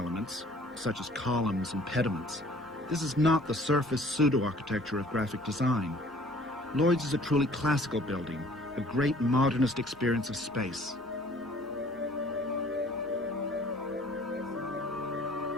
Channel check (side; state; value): both; normal; correlation 0.53